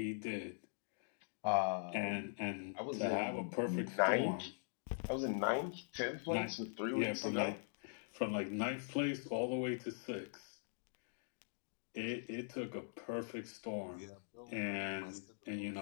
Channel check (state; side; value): silent; right; digital silence